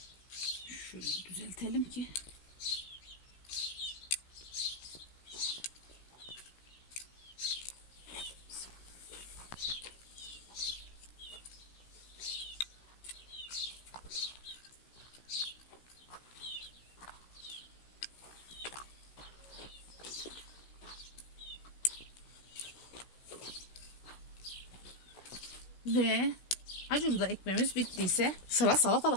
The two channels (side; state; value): right; late; 16 ms